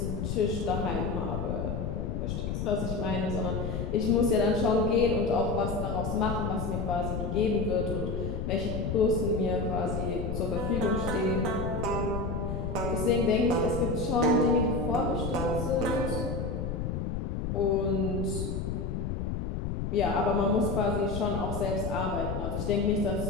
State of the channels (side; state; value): left; noise; rumble, 2 dB below the sound